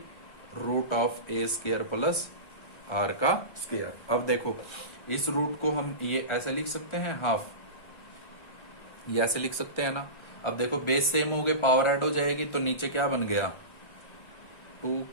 √A² plus R का स्क्वायर। अब देखो इस रूट को हम ये ऐसे लिख सकते हैं, हाफ, ये ऐसे लिख सकते हैं ना। अब देखो बेस सेम हो गए, पावर ऐड हो जाएगी, तो नीचे क्या बन गया,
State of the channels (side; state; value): right; late; 1.4 ms